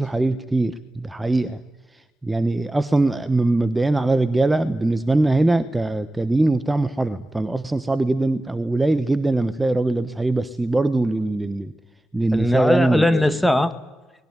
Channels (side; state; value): both; normal; correlation 0.95